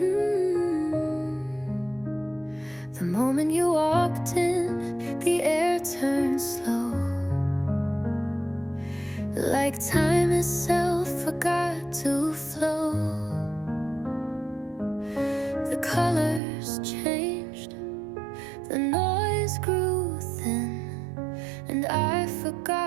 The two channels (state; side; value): drops out; left; at 16.4 s